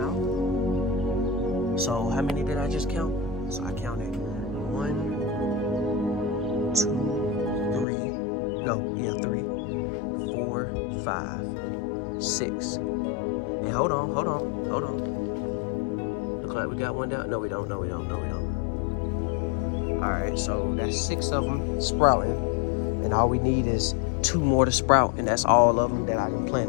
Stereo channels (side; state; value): right; drops out; at 7.9 s